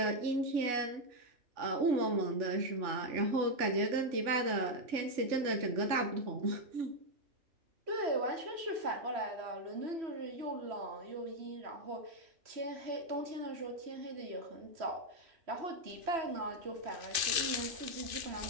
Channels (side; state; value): left; late; 2.6 ms